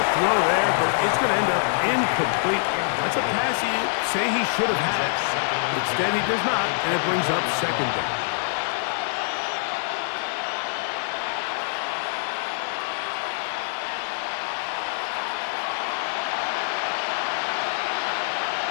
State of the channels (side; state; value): right; silent; digital silence